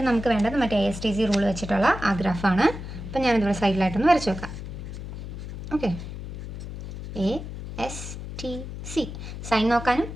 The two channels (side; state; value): left; noise; hum, 9 dB below the sound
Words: നമുക്ക് വേണ്ടത് മറ്റേ ASTC റൂൾ വെച്ചിട്ടുള്ള ആ ഗ്രാഫാണ്. അപ്പോൾ ഞാനിതിവിടെ സൈഡിലായിട്ടൊന്ന് വരച്ച് വെക്കാം. ഓക്കെ, ASTC സൈൻ നോക്കാനും